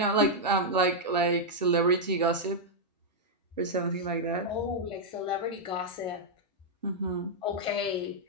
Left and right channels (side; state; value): both; normal; correlation -0.04